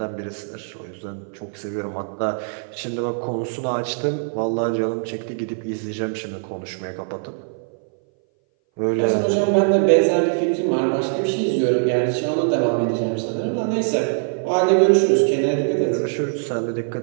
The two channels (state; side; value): silent; left; 60 dB below the other